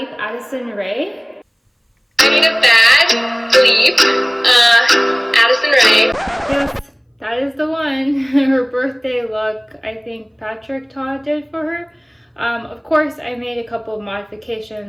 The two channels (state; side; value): identical; both; correlation 1.00